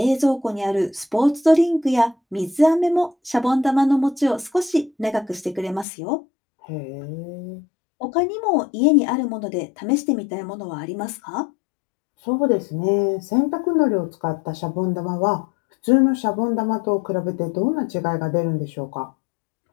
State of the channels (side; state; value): right; drops out; at 5.9 s